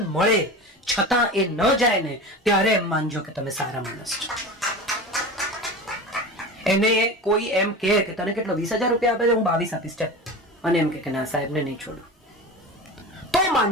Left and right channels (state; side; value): normal; both; correlation 0.30